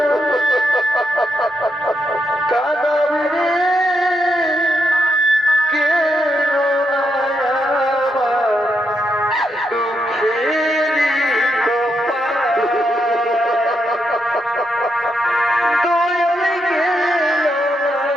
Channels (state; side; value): normal; both; correlation 0.80